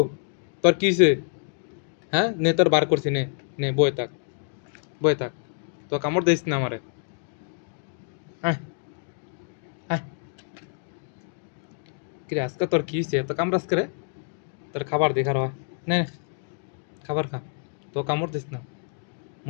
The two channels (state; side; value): silent; right; 58 dB below the other